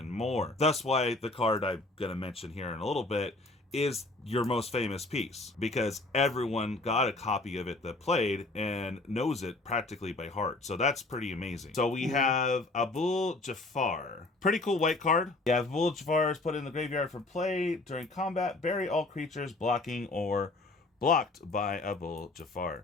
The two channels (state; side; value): quieter; right; 3.1 dB